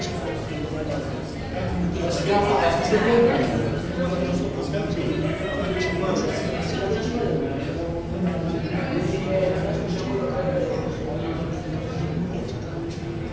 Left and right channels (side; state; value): both; identical; correlation 1.00